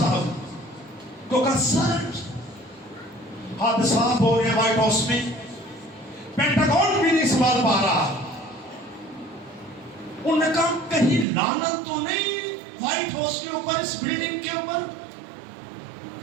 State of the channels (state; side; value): drops out; left; at 11.2 s